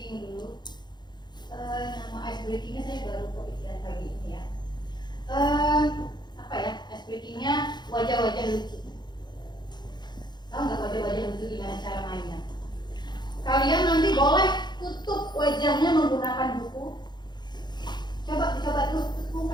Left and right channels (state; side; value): late; right; 0.21 ms